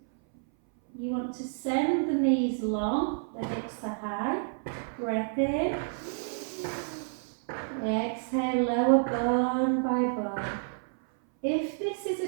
You want to send the knees long, the hips are high. Breath in. Exhale, lower bone by bone. If this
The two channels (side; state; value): left; silent; 58 dB below the other